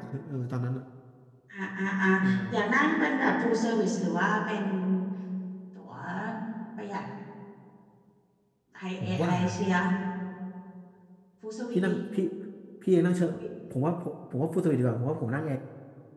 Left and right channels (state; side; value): identical; both; correlation 1.00